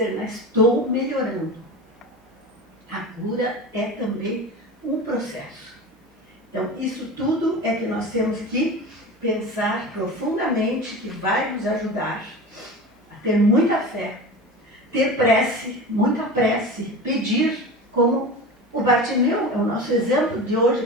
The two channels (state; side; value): normal; both; correlation 0.31